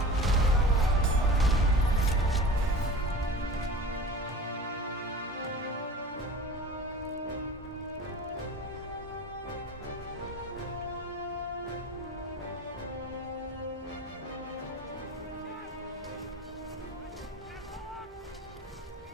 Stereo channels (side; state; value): both; normal; correlation 0.37